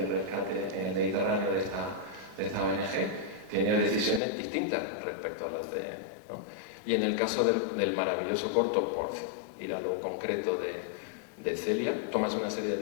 rescate en el Mediterráneo de esta ONG, tiene decisiones distintas respecto a las de... ¿no? Y en el caso del maravilloso corto, por ir a lo concreto de Celia, tomas una serie de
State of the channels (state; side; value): drops out; right; at 4.2 s